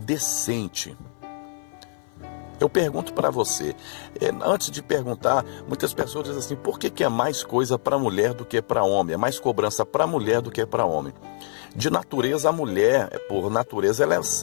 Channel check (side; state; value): right; silent; 55 dB below the other